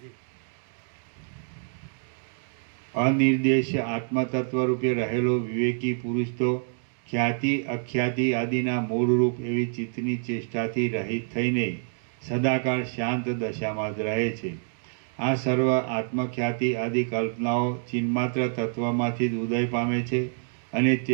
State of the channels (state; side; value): silent; left; 57 dB below the other